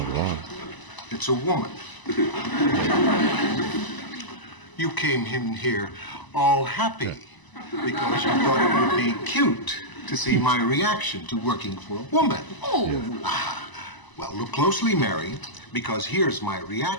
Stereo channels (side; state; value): right; late; 1.0 ms